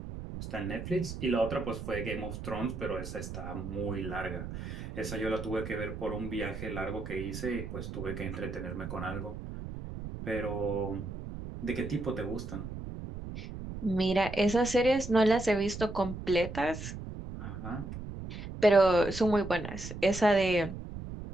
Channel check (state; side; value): noise; right; rumble, 8 dB below the sound